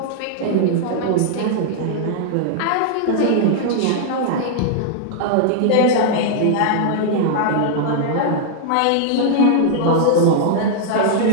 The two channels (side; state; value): both; different; correlation -0.01